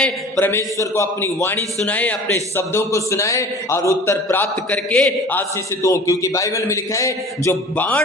परमेश्वर को अपनी वाणी सुनाएं, अपने शब्दों को सुनाएं और उत्तर प्राप्त करके आशीषित हो। क्योंकि बाइबल में लिखा है, जो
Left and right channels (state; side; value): normal; both; correlation 0.42